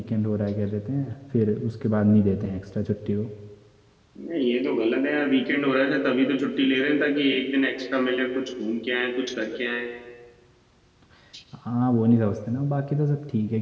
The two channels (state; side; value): identical; both; correlation 1.00